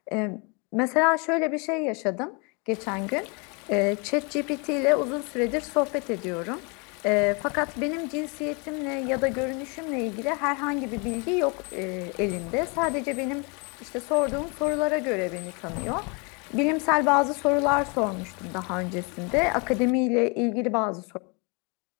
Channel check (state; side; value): quieter; right; 32.1 dB